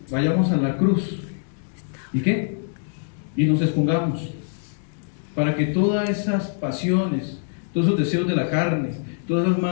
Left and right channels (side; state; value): right; silent; digital silence